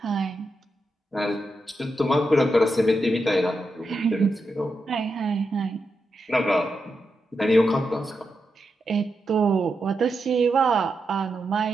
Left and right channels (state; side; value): normal; both; correlation 0.86